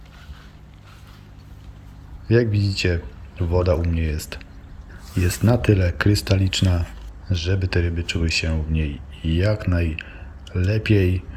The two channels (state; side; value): identical; both; correlation 1.00